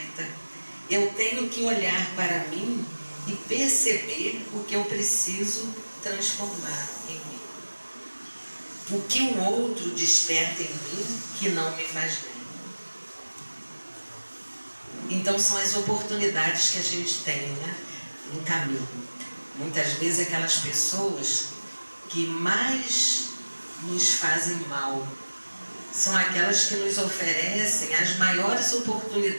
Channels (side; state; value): both; inverted; correlation -1.00